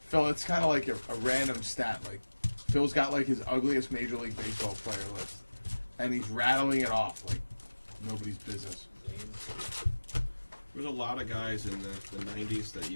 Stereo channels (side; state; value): both; inverted; correlation -1.00